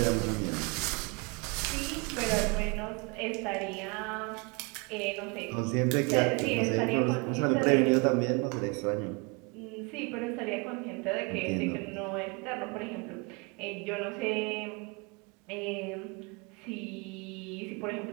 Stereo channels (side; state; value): left; quieter; 30.4 dB